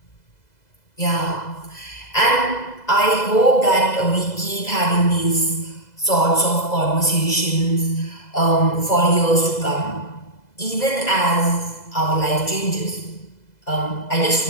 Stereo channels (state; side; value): late; right; 2.0 ms